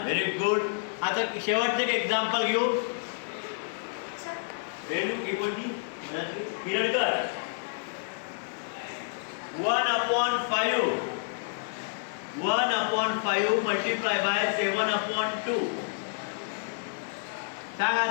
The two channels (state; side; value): silent; right; digital silence